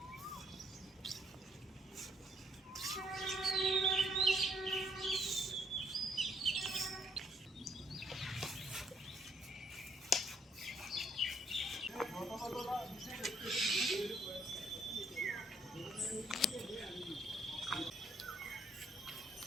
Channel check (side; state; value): both; normal; correlation 0.68